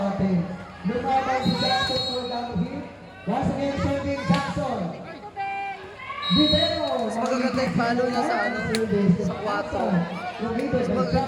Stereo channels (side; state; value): both; identical; correlation 1.00